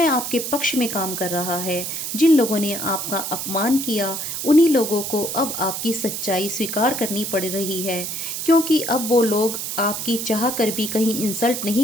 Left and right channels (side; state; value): right; noise; hiss, 4 dB below the sound